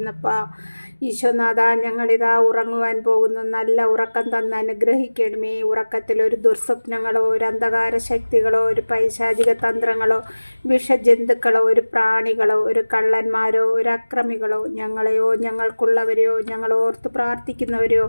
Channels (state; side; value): inverted; both; correlation -1.00